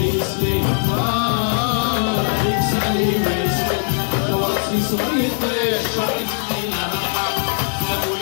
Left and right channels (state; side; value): silent; right; digital silence